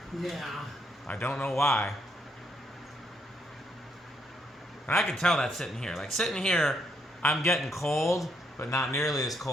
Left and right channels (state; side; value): normal; both; correlation 0.74